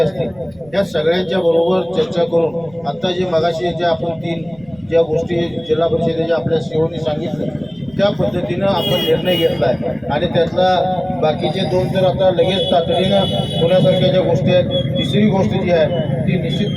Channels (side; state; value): right; noise; rumble, 27 dB below the sound